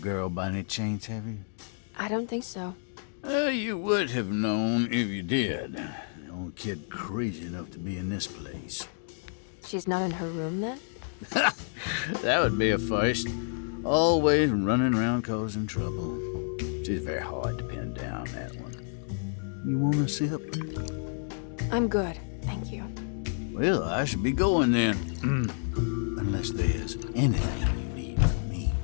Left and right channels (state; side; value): silent; right; digital silence